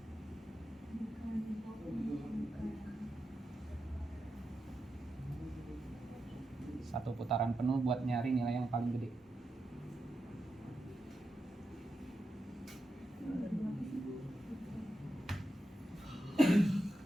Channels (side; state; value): both; normal; correlation 0.88